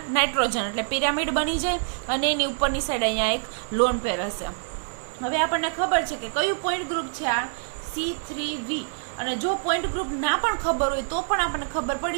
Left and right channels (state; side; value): silent; left; digital silence